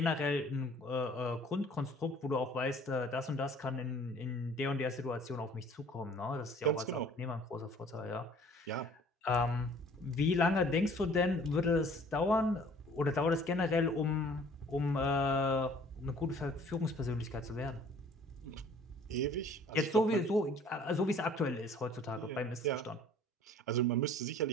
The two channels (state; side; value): normal; both; correlation 0.53